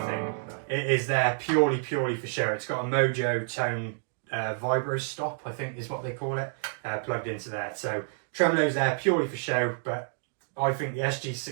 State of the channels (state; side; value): silent; left; digital silence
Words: It is there purely for show. It's got a Mojo tone vibro stop, I think is what they call it, plugged into there. So tremolo's there purely for show, but I think the